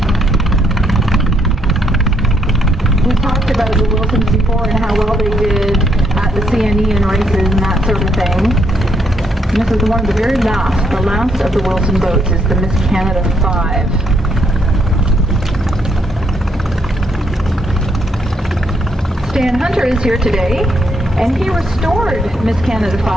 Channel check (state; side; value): normal; both; correlation 0.73